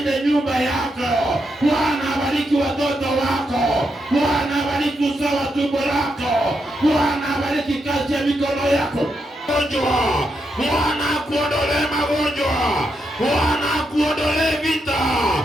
nyumba yako. Bwana abariki watoto wako. Bwana abariki uzao wa tumbo lako. Bwana abariki kazi ya mikono yako. Bwana akuondolee magonjwa. Bwana akuondolee vita.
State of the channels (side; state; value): both; normal; correlation 0.82